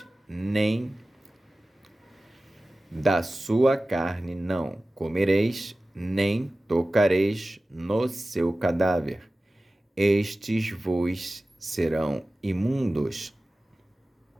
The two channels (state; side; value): normal; both; correlation 0.96